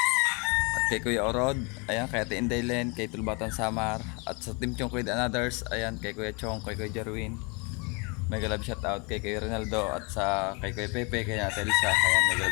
At kay Kuya Orod, ayan, kay Ate Indaylen, kay Tulbatan Samar. At sa Team Chong Kuya and Others, ayan, kay Kuya Chong, kay Kuya Jerwin. Mega love shoutout kay Kuya Ronaldo at sa kay Kuya Pepe, kay Ate Elsa, ayan, mega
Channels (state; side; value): quieter; right; 31.1 dB